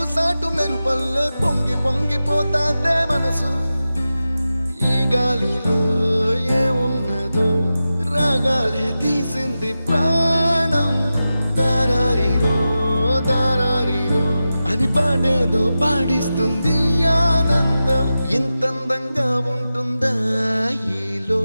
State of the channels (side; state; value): both; inverted; correlation -0.93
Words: సాటు మెరుపల్లే పొంగి పొంగిపోతాందే మనసు ఈ గాలిలో ఏమున్నదో రాగాలే తీసింది ప్రాణం దారారిరో దారారిరో అని పాడేదో పాడిస్తుంది ఆనందం ఇంతందంగా ఉంటుందా ఈ